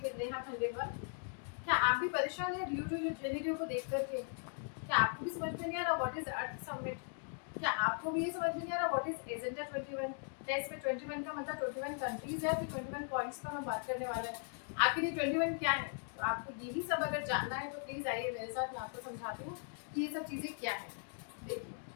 Neha Khandelwal. क्या आप भी परेशान हैं रियो टू जेनेरियो को देख करके? क्या आपको भी समझ में नहीं आ रहा व्हाट इज अर्थ समिट? क्या आपको भी ये समझ में नहीं आ रहा व्हाट इज एजेंडा 21? क्या इसमें 21 का मतलब 21 कंट्रीज है, फिर 21 पॉइंट्स पर हम बात करने वाले हैं। आखिर ये 21 क्या है? तो आपको यही सब अगर जानना है तो प्लीज आइए मेरे साथ, मैं आपको समझाती हूँ कि ये सब चीजें क्या है। देखिए,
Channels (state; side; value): silent; right; 52 dB below the other